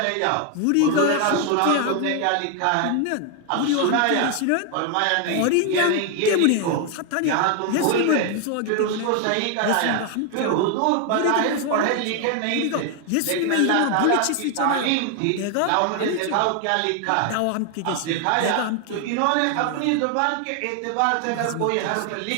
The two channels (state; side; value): different; both; correlation 0.00